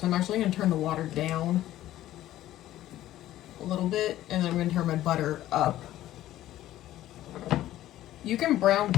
I'm actually going to turn the water down a little bit, and then I'm going to turn my butter up. You can brown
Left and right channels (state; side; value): quieter; right; 14.0 dB